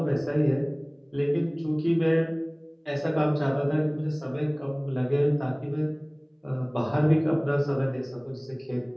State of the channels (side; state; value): both; identical; correlation 1.00